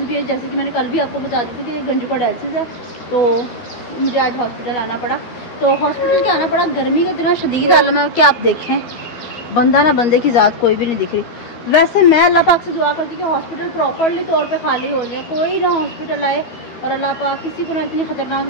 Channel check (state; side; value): late; right; 12 ms